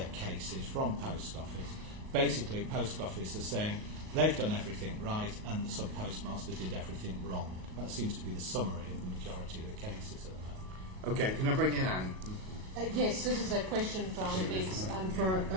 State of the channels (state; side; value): late; left; 37 ms